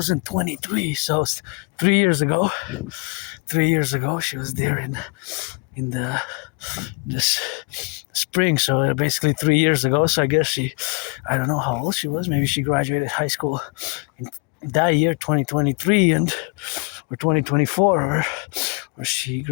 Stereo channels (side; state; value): right; quieter; 30.0 dB